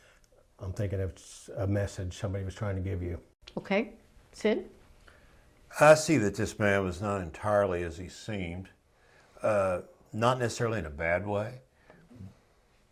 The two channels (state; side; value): identical; both; correlation 1.00